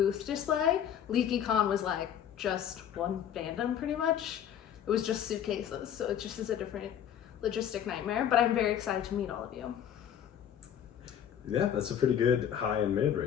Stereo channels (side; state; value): right; quieter; 9.6 dB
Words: display. LeakyCon was like just one fandom pretty much. It was just suitcases, so it just is a different logistic nightmare, but I'm very excited to meet all of you. Yeah, that's a pretty good high and mid,